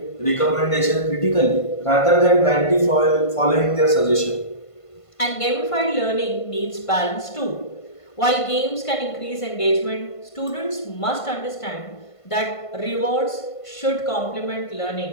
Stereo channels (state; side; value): late; right; 1.5 ms